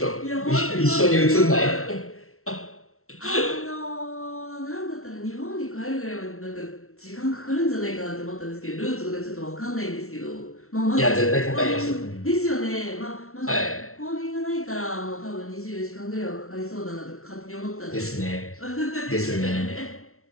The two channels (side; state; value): right; late; 0.63 ms